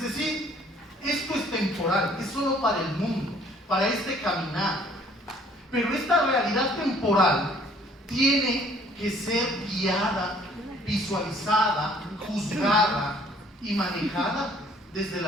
esto es temporal, es solo para el mundo, para este caminar. Pero esta realidad temporal tiene que ser guiada, visualizada, juzgada y manejada desde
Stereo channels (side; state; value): both; normal; correlation 0.58